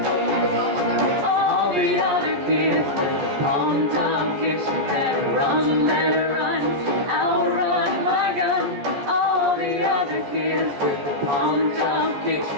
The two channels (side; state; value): left; late; 14 ms